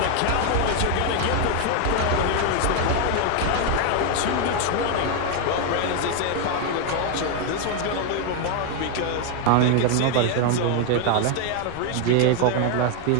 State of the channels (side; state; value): both; different; correlation 0.01